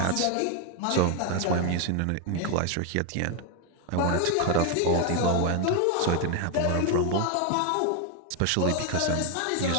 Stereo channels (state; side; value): different; both; correlation 0.01